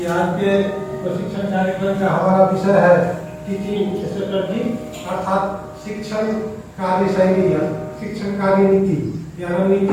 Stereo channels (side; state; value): both; identical; correlation 1.00